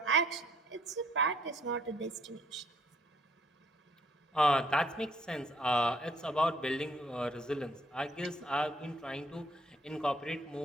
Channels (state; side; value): normal; both; correlation 0.65